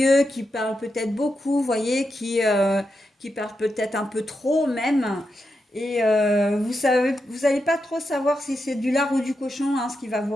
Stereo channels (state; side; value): normal; both; correlation 0.86